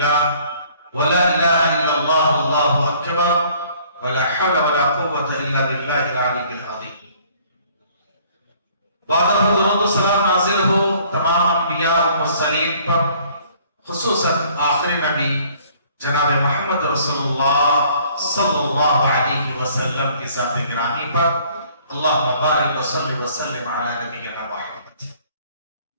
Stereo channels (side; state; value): both; inverted; correlation -0.58